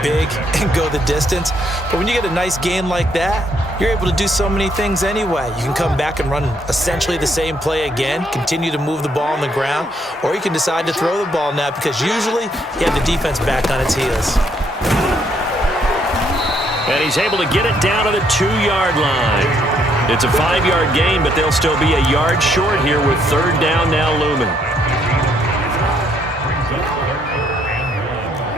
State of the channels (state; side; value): normal; both; correlation 0.71